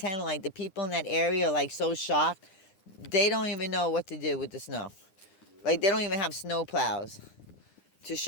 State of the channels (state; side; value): late; right; 9.8 ms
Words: like the people in that area are like so shocked. They don't even know what to do with the snow. Like they don't even have snow plows to